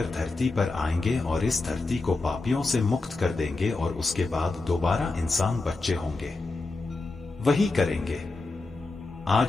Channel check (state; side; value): quieter; right; 3.4 dB